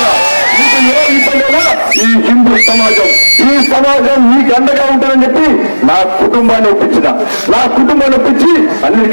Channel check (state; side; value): inverted; both; correlation -1.00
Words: ఈ హిందూ సమాజం, ఈ సమాజం మీకు అండగా ఉంటుందని చెప్పి నా కుటుంబాన్ని ఒప్పించిన, నా కుటుంబాన్ని ఒప్పించి